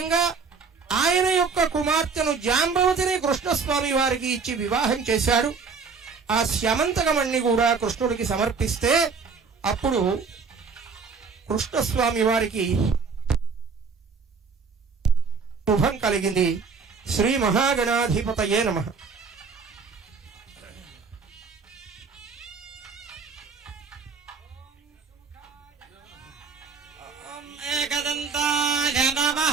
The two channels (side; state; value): left; quieter; 5.1 dB